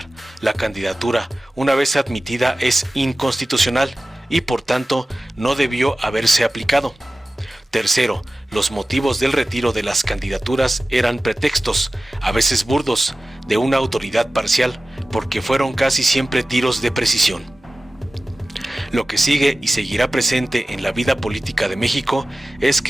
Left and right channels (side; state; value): both; normal; correlation 0.96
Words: la candidatura una vez admitida es inconstitucional y por tanto no debió haberse aplicado. Tercero, los motivos del retiro de las candidaturas eran pretextos, a veces burdos, de una autoridad parcial, porque fueron casi siempre tiros de precisión. Lo que sigue y seguirá presente en la vida política de México es